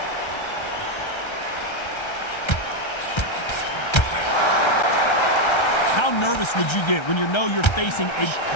How nervous would you get when you know you're facing a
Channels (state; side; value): late; right; 1.3 ms